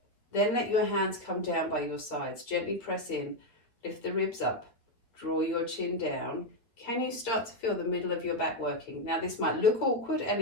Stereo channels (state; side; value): late; right; 8.8 ms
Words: Then let your hands come down by your sides. Gently press in, lift the ribs up, draw your chin down. Can you start to feel the middle of your back working? Now, this might look awkward and